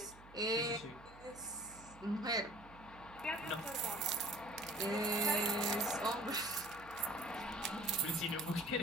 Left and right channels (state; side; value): noise; right; hum, 20 dB below the sound